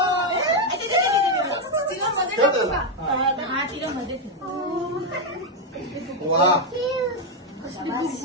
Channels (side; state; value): both; normal; correlation 0.03